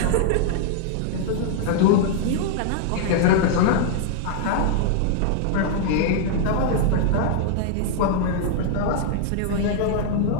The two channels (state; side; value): different; both; correlation -0.01